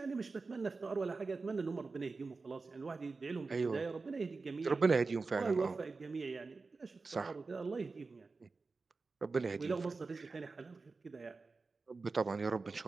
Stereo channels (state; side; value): quieter; left; 4.1 dB